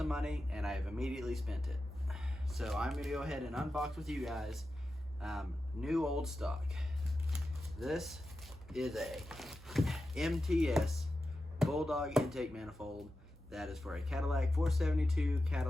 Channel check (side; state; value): both; normal; correlation 0.91